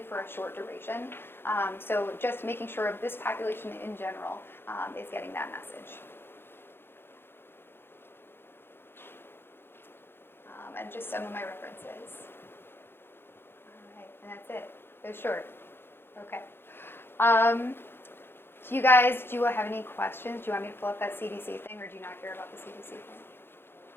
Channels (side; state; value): right; late; 0.11 ms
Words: a short duration. So just making sure this population in general is getting that message. And just some of my references. All right, and that's it. It's short. Okay. Do you guys, do you have any questions? Do you want me to pull up that CDC thing, or do you not care about the CDC thing?